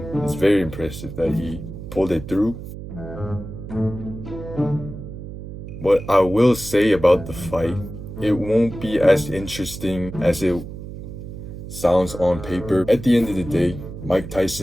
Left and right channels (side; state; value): right; noise; hum, 11 dB below the sound